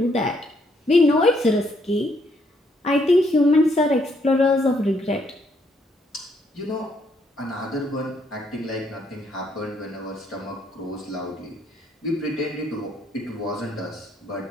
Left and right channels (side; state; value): both; normal; correlation 0.71